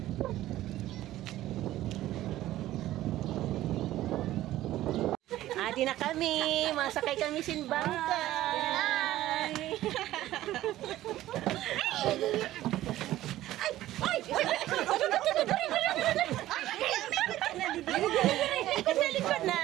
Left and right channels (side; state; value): left; quieter; 14.7 dB